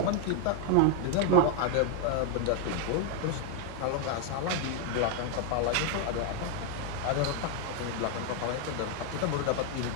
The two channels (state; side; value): different; both; correlation 0.00